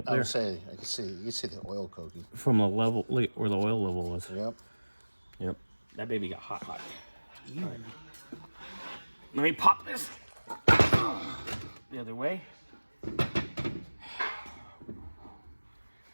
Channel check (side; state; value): both; inverted; correlation -1.00